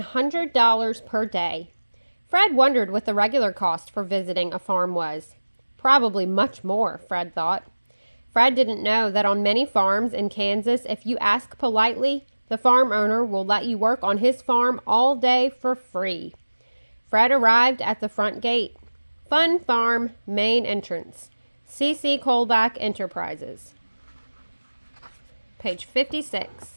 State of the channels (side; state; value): both; inverted; correlation -1.00